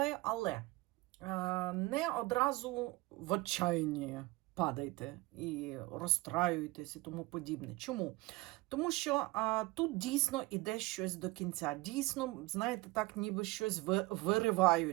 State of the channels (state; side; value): quieter; left; 21.7 dB